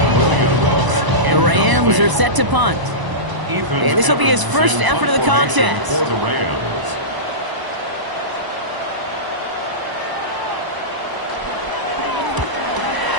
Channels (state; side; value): late; left; 1.0 ms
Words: The Rams are set to punt. And this will be his first effort of the contest. For the Rams.